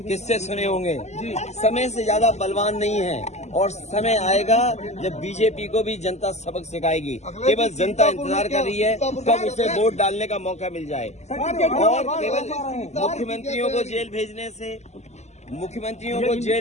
किस्से सुने होंगे। समय से ज्यादा बलवान नहीं है और समय आएगा जब बीजेपी को भी जनता सबक सिखाएगी। केवल जनता इंतजार कर रही है कब उसे वोट डालने का मौका मिल जाए। और केवल मुख्यमंत्रियों को जेल भेजने से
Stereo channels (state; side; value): late; right; 0.33 ms